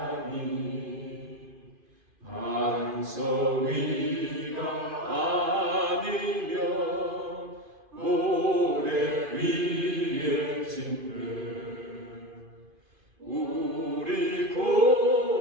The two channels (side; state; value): left; late; 2.5 ms